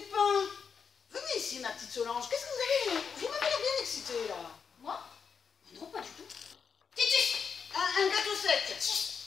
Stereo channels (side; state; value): right; quieter; 6.3 dB